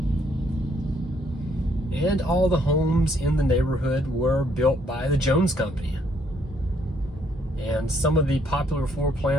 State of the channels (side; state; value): both; normal; correlation 0.69